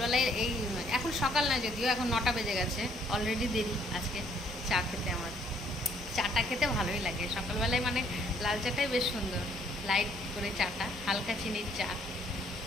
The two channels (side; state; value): both; normal; correlation 0.64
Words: এখন সকাল না, যদিও এখন 9টা বেজে গেছে, অলরেডি দেরি আজকে চা খেতে। আমার চাটা খেতে ভালোই লাগে সকালবেলায়, মানে লাল চাটাই বেশ সুন্দর, লাইট করে চাটা, হালকা চিনির চা।